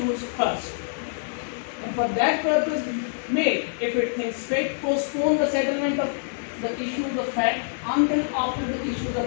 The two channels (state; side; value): silent; right; digital silence